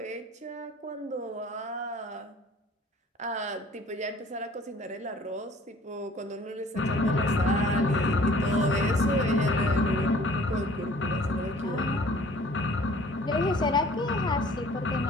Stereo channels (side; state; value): both; normal; correlation 0.52